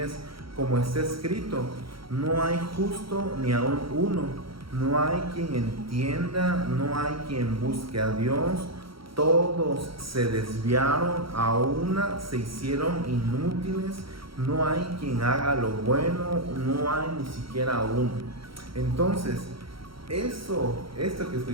como está escrito, no hay justo ni aun uno, no hay quien entienda, no hay quien busque a Dios, todos se desviaron, a una se hicieron inútiles, no hay quien haga lo bueno, no hay ni siquiera uno. Entonces, esto que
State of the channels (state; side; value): late; left; 0.74 ms